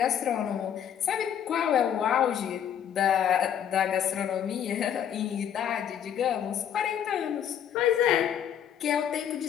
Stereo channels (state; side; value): quieter; right; 9.3 dB